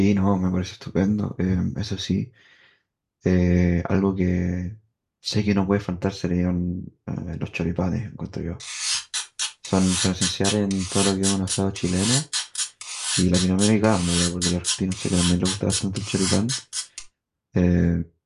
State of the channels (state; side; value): identical; both; correlation 1.00